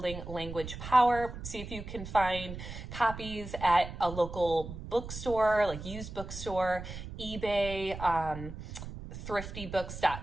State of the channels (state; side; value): noise; right; rumble, 10 dB below the sound